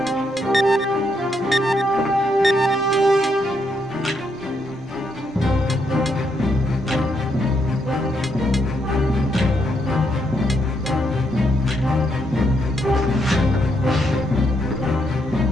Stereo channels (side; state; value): both; normal; correlation 0.77